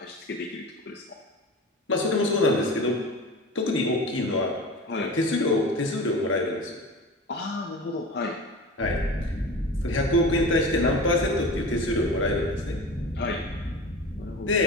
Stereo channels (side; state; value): both; normal; correlation 0.34